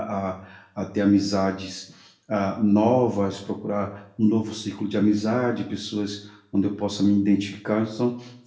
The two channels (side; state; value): both; identical; correlation 1.00